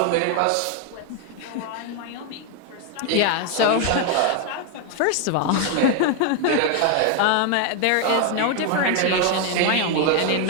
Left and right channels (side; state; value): both; different; correlation 0.01